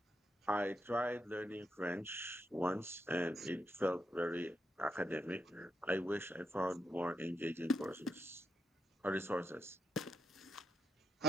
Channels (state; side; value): normal; both; correlation 0.80